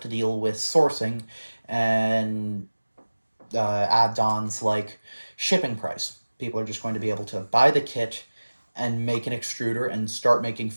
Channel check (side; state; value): both; inverted; correlation -1.00